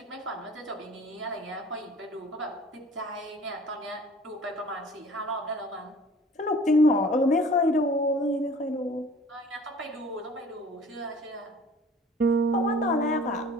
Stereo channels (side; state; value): both; normal; correlation 0.48